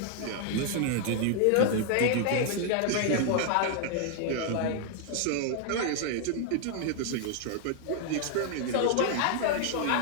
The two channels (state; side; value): different; both; correlation 0.00